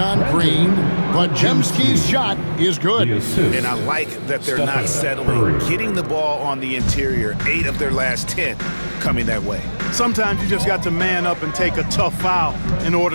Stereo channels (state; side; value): inverted; both; correlation -1.00